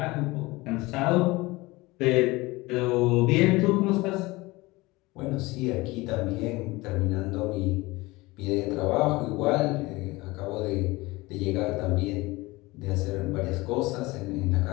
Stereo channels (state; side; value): quieter; right; 21.7 dB